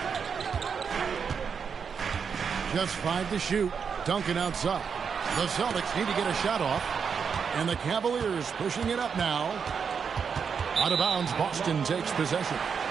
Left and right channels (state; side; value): quieter; left; 6.4 dB